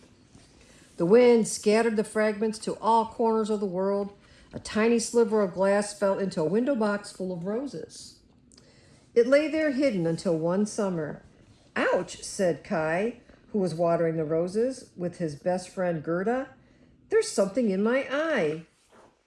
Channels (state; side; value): identical; both; correlation 1.00